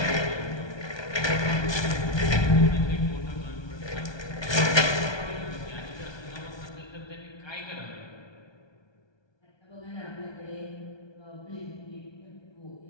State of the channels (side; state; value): right; late; 1.2 ms